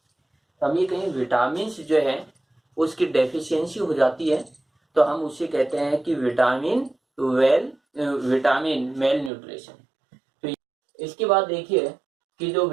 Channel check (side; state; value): left; drops out; at 9.3 s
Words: हम ये कहें विटामिन जो है उसकी डेफिशिएंसी हो जाती है तो हम उसे कहते हैं कि विटामिन मेल न्यूट्रिशन। तो इसके बाद देखिए कि जो